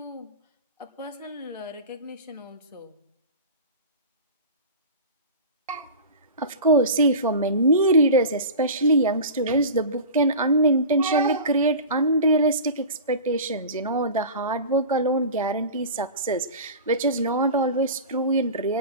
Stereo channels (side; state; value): both; inverted; correlation -0.33